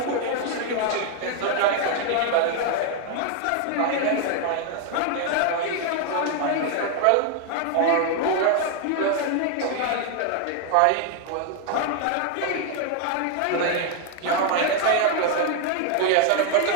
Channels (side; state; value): both; different; correlation 0.00